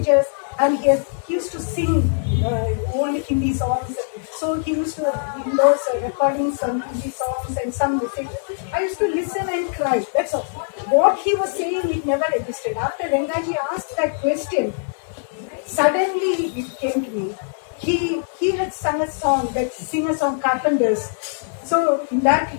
and he used to sing old Hindi songs. So he used to, in those recordings, some Hindi songs and some messages. I used to listen and cry. That's all. What he was saying, it never existed. After Rangaji asked that question, suddenly it came to me. He had sung a song, that singer song, Carpenters. So in that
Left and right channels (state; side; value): silent; right; digital silence